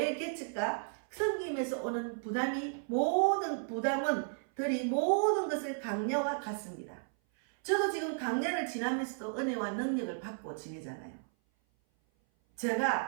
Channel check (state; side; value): silent; left; 55 dB below the other